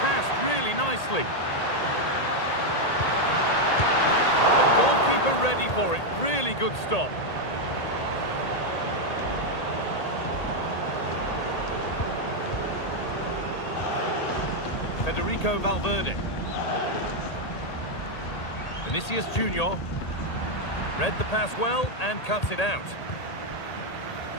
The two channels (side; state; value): right; late; 1.8 ms